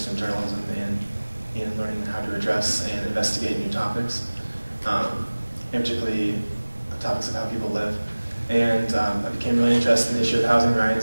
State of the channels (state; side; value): inverted; both; correlation -1.00